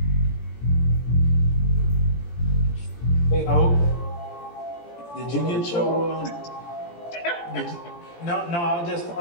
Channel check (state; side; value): late; right; 17 ms